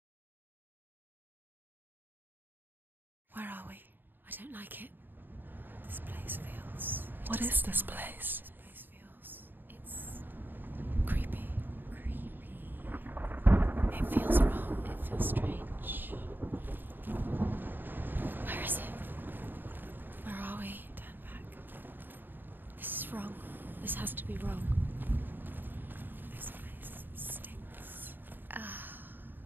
Where are we? I don't like it. This place feels... What is this place? This place feels... It's... creepy. Creepy. It feels wrong. It feels strange. Where is it? Where are we? Turn back. This is wrong. This has to be wrong. This place stinks.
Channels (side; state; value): left; late; 0.093 ms